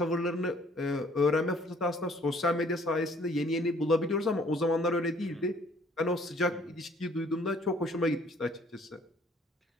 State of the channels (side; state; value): both; normal; correlation 0.59